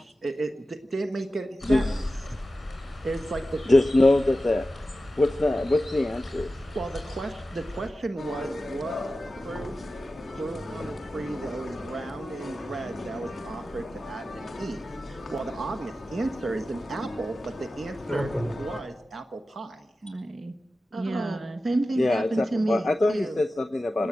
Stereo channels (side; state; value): both; normal; correlation 0.94